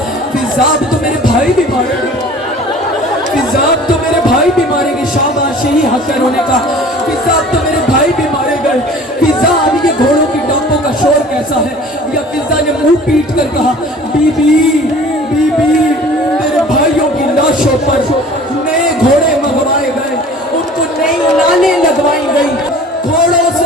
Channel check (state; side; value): normal; both; correlation 0.46